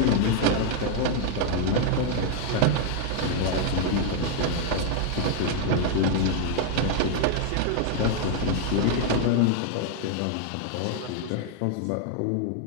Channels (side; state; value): both; different; correlation 0.00